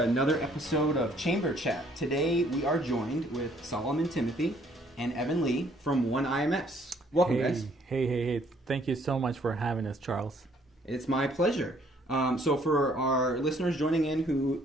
episode of Chamber Chat. Today we are joined with Solomon Timothy and Evan Lee from One IMS. Welcome, guys. Hey. Thank you so much for having us, Charles. It's my pleasure. So for our listeners joining in who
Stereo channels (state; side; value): normal; both; correlation 0.63